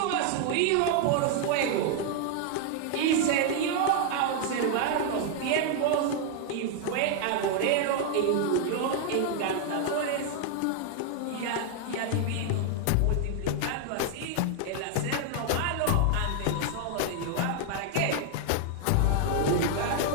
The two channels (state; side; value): different; both; correlation 0.00